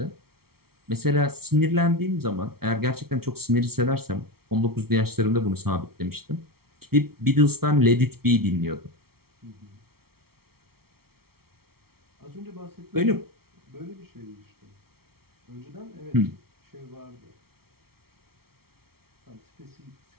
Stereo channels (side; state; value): left; late; 0.94 ms